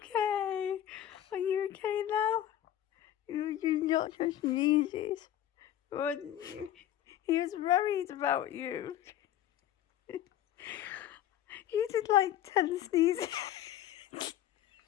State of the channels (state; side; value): quieter; right; 11.8 dB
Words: Are you okay now? You not just sneezes, wasn't you? He was worried about you. You did like 10 sneezes.